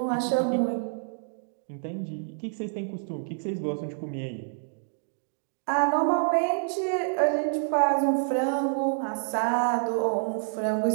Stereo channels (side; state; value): left; silent; digital silence